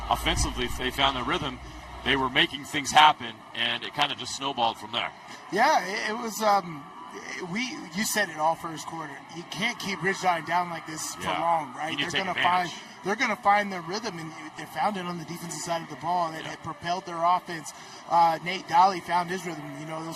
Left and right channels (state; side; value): identical; both; correlation 1.00